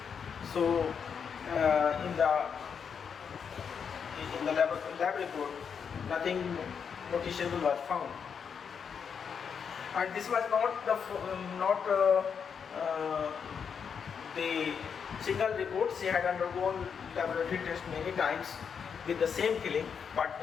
So in the lab report, nothing noticeable was found. And this was not the single report. She had undergone laboratory test many times with the same feeling, but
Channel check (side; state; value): right; quieter; 6.8 dB